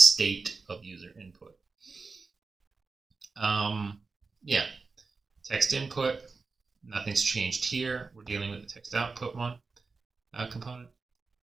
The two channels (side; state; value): left; quieter; 4.3 dB